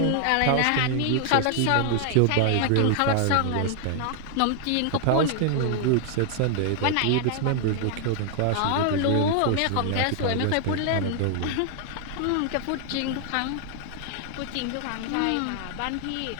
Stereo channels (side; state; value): both; different; correlation 0.00